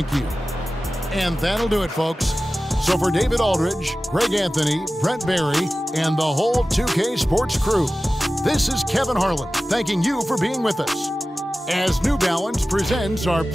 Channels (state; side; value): normal; both; correlation 0.96